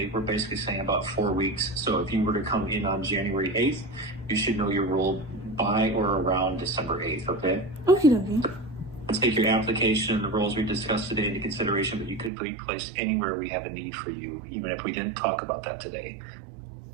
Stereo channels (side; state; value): left; drops out; at 12.3 s